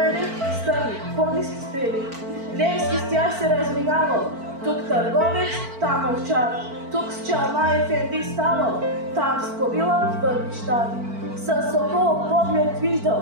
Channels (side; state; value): left; late; 4.5 ms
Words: стърни, по-ниски стрели. Левски с тях се разминавал, тук търговец, там овчар, тук с чалма ефенди ставал, там с кобила в бъднищар. С сокол поглед